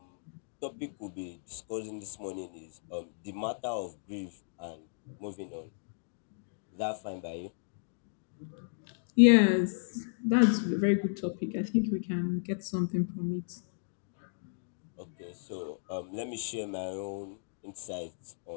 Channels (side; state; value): right; silent; digital silence